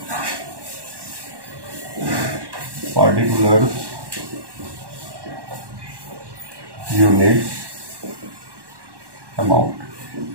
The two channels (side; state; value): left; late; 1.1 ms